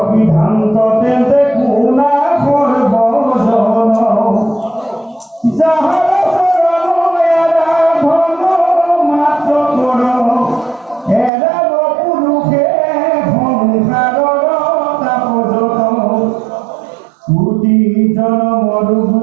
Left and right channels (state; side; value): drops out; left; at 11.3 s